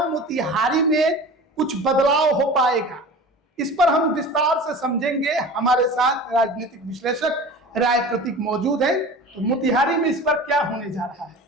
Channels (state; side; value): normal; both; correlation 0.37